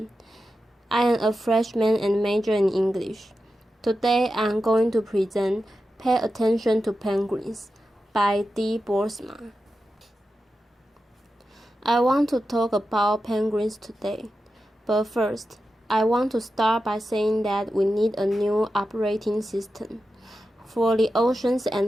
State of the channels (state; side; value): normal; both; correlation 0.91